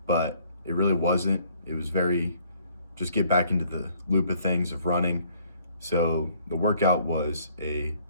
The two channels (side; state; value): both; inverted; correlation -0.62